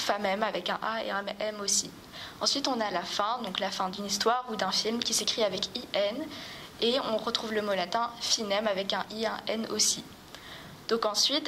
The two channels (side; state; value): both; identical; correlation 1.00